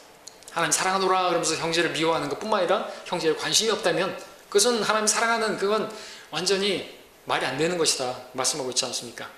하나님 사랑하노라 그러면서 형제를 미워하는 것뿐만 아니라 형제에 관심이 없다면 그것은 하나님 사랑하는, 그건 완전히 말이 안 되는 것이다 말씀하고 있지 않습니까?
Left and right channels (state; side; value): identical; both; correlation 1.00